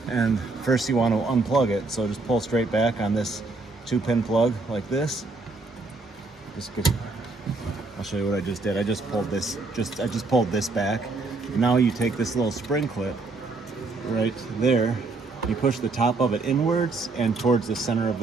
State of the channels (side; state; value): left; quieter; 3.5 dB